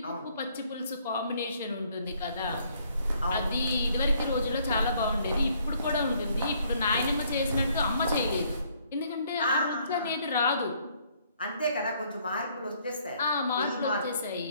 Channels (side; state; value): both; inverted; correlation -0.65